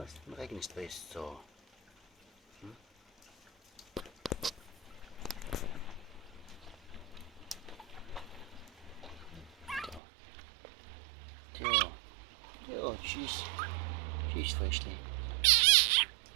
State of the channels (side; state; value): left; drops out; at 10.0 s